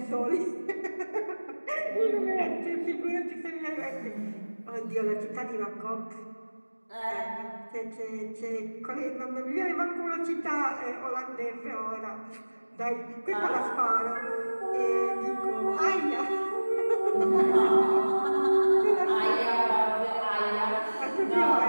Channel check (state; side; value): inverted; both; correlation -1.00